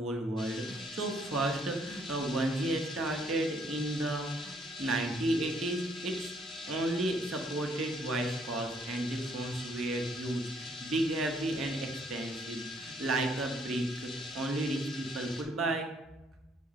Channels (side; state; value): both; normal; correlation 0.67